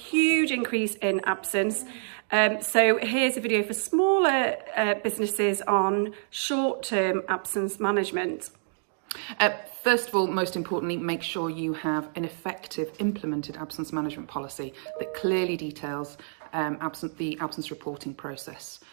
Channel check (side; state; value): left; silent; digital silence